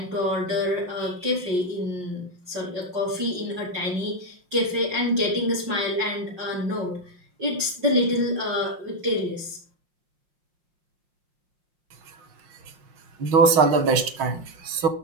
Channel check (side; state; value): left; late; 5.6 ms